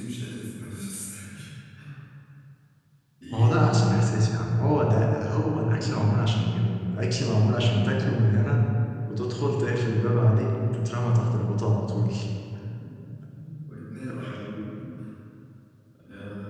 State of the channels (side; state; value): both; identical; correlation 1.00